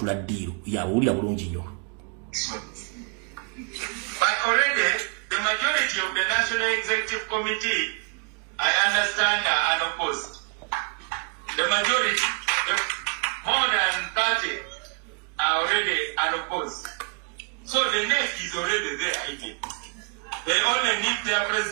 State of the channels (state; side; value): quieter; left; 36.8 dB